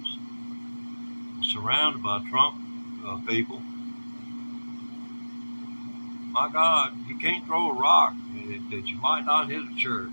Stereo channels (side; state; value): both; inverted; correlation -1.00